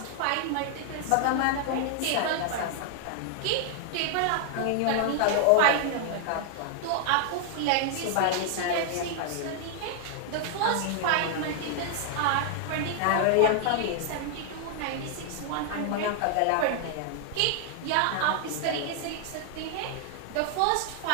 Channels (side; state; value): both; different; correlation 0.00